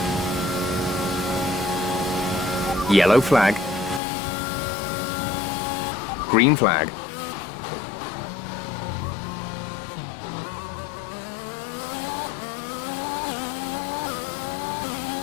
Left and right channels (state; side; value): drops out; right; at 4.0 s